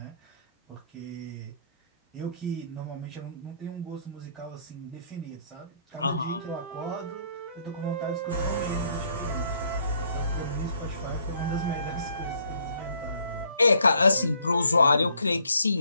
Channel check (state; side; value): inverted; both; correlation -0.65